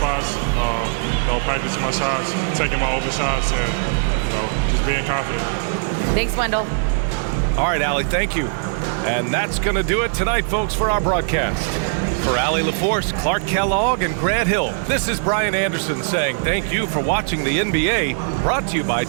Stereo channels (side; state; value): left; silent; 65 dB below the other